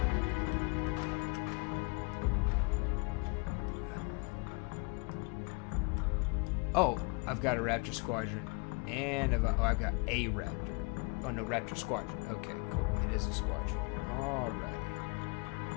Oh, I've got a Raptor squadron, and I've got a Raptor. Oh no, Raptor squadron. Okay, cool. It is a squadron. Alrighty.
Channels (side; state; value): right; quieter; 32.2 dB